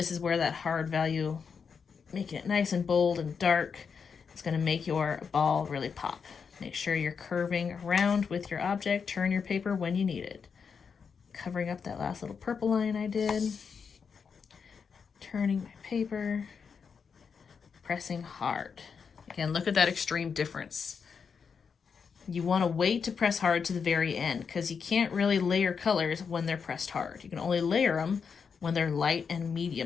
is where that hard value, making it nice and bold and dark, is going to make your ball really pop. Make sure you're curving around with your object. Turn your paper when you need it. Covering up that last little purple line I did. Turning my paper. Pressing hard. Again, look at that extreme difference. You want to wait to press hard to the very end because you can't really layer colors when they're pressed hard. You can only layer them when they're light and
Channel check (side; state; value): right; quieter; 6.1 dB